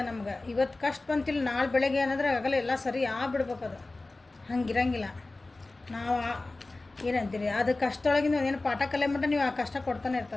ನಮ್ಗೆ. ಇವತ್ತು ಕಷ್ಟ ಬಂತಿಲ್ಲ, ನಾಳೆ ಬೆಳಗ್ಗೆ ಏನಾದ್ರೆ ಆಗಲ್ಲ, ಎಲ್ಲ ಸರಿ ಆಗ್ಬಿಡ್ಬೇಕು. ಅದು ಹಂಗಿರಂಗಿಲ್ಲ. ನಾವು ಏನಂತೀರಿ, ಅದು ಕಷ್ಟದೊಳಗಿಂದ ಏನು ಪಾಠ ಕಲಿಯ ಮಟ್ಟ ನೀವು ಆ ಕಷ್ಟ ಕೊಡ್ತಾನೆ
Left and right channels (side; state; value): right; quieter; 3.1 dB